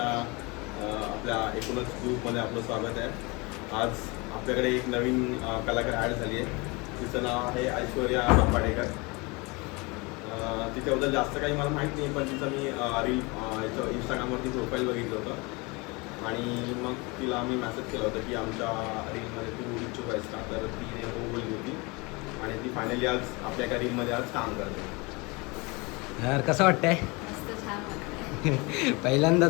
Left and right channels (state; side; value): quieter; right; 26.8 dB